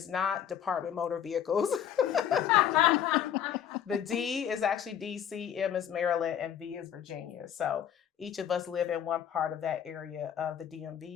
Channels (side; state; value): right; quieter; 9.4 dB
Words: not Department Motor Vehicles. The D is actually DC, M is Maryland, and V is Virginia. So each of us live in one part of that area of the